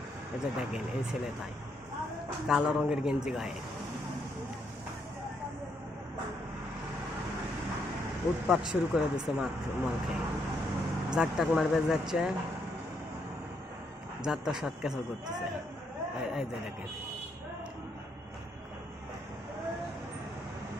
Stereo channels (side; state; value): both; normal; correlation 0.75